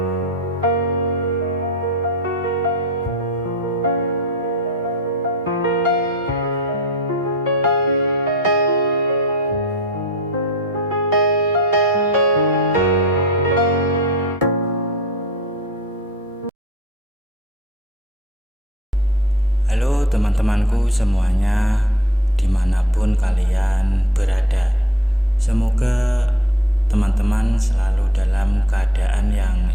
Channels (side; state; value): both; normal; correlation 0.45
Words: teman-temanku semuanya, dimanapun kalian berada. Semoga teman-teman selalu dalam keadaan yang